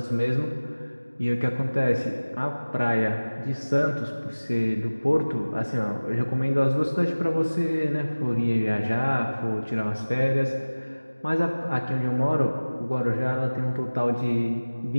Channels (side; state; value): both; inverted; correlation -1.00